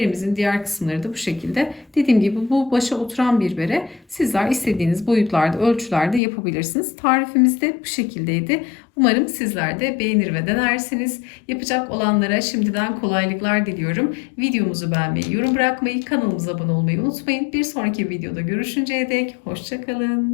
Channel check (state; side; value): drops out; right; at 6.2 s